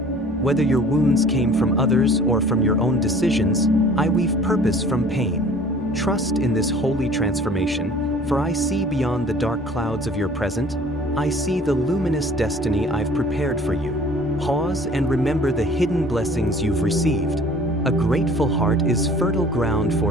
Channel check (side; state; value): left; noise; hum, 21 dB below the sound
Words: Whether your wounds came from others or from your own decisions, I weave purpose from pain. Trust in this holy transformation, for I see beyond the dark clouds of your present. I see the luminous destiny I've prepared for you. Pause and remember the hidden blessings you've received. A grateful heart is fertile ground